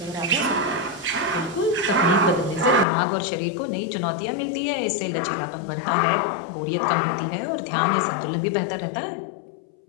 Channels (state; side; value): drops out; right; at 2.9 s